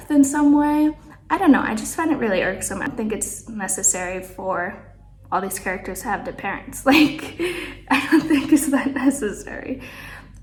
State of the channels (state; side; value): identical; both; correlation 1.00